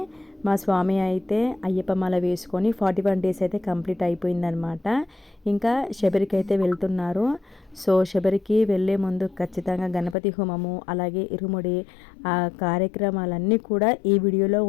మా స్వామి అయితే అయ్యప్ప మాల వేసుకొని 41 డేస్ అయితే కంప్లీట్ అయిపోయిందనమాట. ఇంకా శబరికి అయితే వెళ్తున్నారు. సో శబరికి వెళ్ళే ముందు ఖచ్చితంగా గణపతి హోమము, అలాగే ఇరుముడి ఆ కార్యక్రమాలన్నీ కూడా ఈ వీడియోలో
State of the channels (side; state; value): right; drops out; at 10.2 s